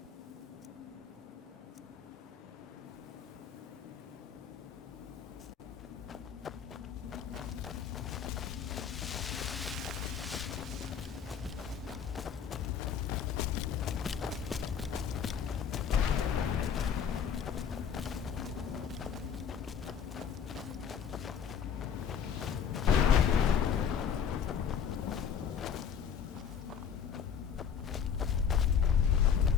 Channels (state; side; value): quieter; right; 7.5 dB